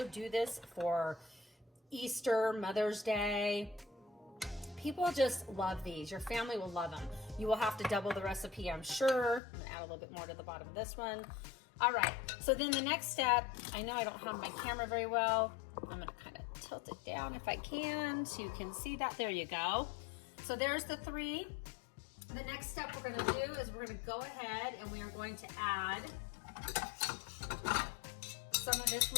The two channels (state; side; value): drops out; right; at 9.4 s